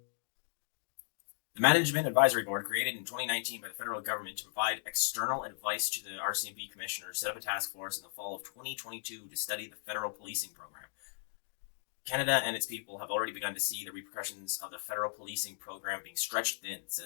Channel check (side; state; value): right; silent; digital silence